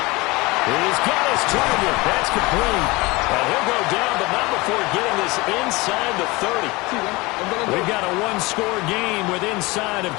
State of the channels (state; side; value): quieter; right; 23.2 dB